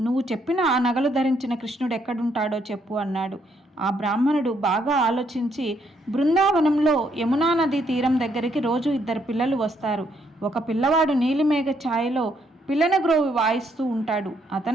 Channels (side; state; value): both; normal; correlation 0.72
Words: నువ్వు చెప్పిన ఆ నగలు ధరించిన కృష్ణుడు ఎక్కడుంటాడో చెప్పు అన్నాడు. ఆ బ్రాహ్మణుడు బాగా ఆలోచించి, బృందావనంలో యమునా నదీ తీరం దగ్గరికి రోజు ఇద్దరు పిల్లలు వస్తారు. ఒక పిల్లవాడు నీలిమేఘ ఛాయలో పిల్లన గ్రోవి వాయిస్తూ ఉంటాడు.